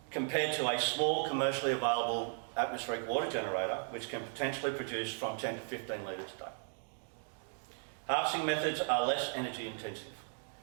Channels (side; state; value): left; silent; 54 dB below the other